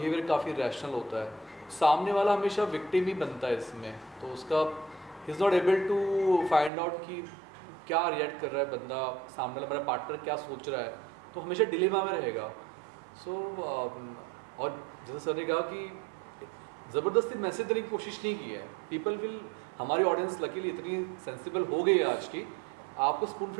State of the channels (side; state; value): left; drops out; at 6.7 s